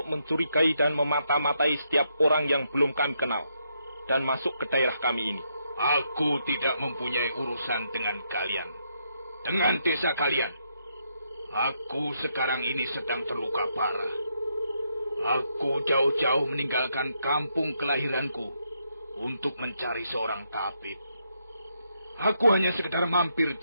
mencurigai dan memata-matai setiap orang yang belum kami kenal dan masuk ke daerah kami ini. Aku tidak mempunyai urusan dengan kalian, dengan desa kalian. Aku sekarang ini sedang terluka parah. Aku jauh-jauh meninggalkan kampung kelahiranku untuk mencari seorang tabib. Aku hanya sekedar mampir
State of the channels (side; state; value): both; inverted; correlation -0.78